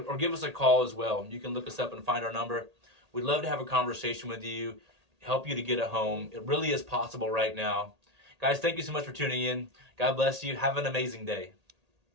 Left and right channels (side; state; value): left; late; 1.8 ms